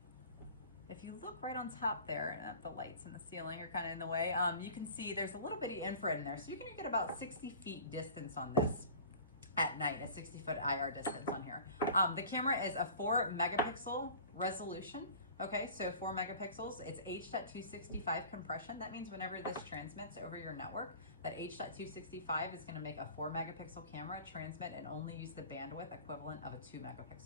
If you look right on top there, the lights in the ceiling are kind of in the way, you can see there's a little bitty infrared in there. So you're going to get about 60 feet distance on this at night, a 60-foot IR distance on here. The camera is a 4 megapixel resolution. Okay, so 4 megapixels. It's H.265 compression. That means whenever this transmits over your network, that H.265 is going to make a 4 megapixel camera transmit and only use the bandwidth equivalent of a 2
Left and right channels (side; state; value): both; inverted; correlation -0.42